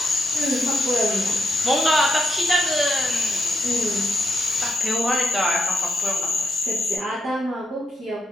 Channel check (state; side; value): normal; both; correlation 0.80